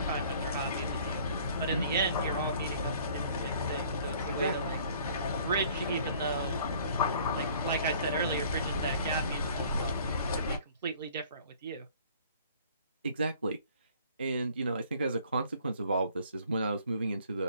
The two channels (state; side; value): inverted; both; correlation -0.54